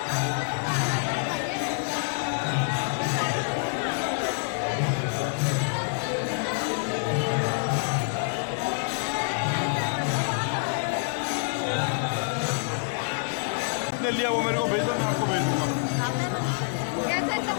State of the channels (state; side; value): silent; right; 58 dB below the other